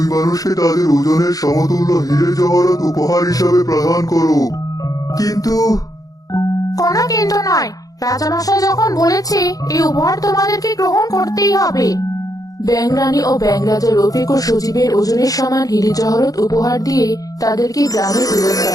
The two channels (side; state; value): right; late; 0.17 ms